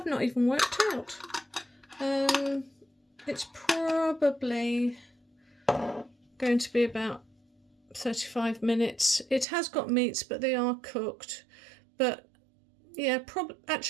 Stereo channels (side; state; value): left; drops out; at 9.5 s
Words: not even worked out. It's probably going to be about 35 minutes. It has got meats, but they are cooked. But yeah,